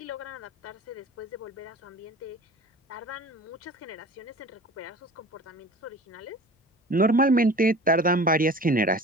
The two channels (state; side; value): normal; both; correlation 0.40